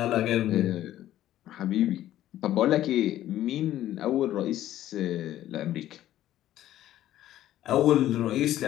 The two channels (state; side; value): quieter; right; 13.1 dB